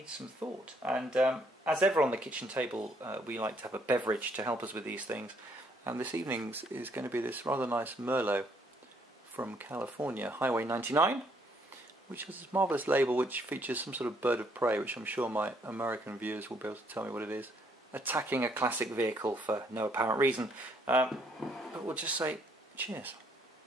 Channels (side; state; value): both; normal; correlation 0.68